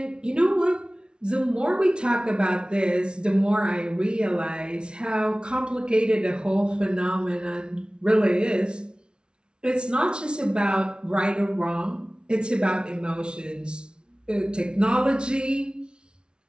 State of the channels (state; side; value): late; left; 0.056 ms